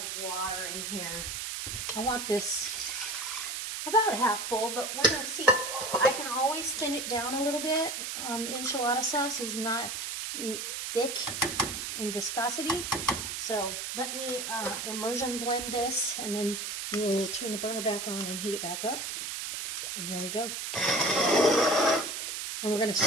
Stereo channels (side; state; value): right; noise; hiss, 4 dB below the sound